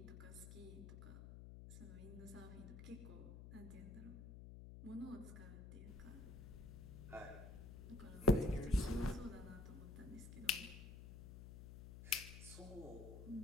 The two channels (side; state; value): left; noise; hum, 11 dB below the sound